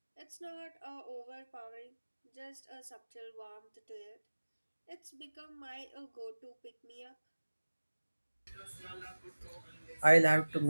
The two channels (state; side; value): inverted; both; correlation -1.00